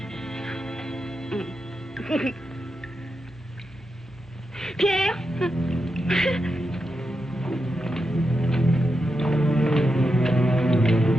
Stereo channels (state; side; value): normal; both; correlation 0.87